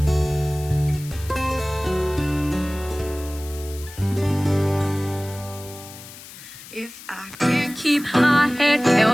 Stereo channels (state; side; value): noise; left; hiss, 16 dB below the sound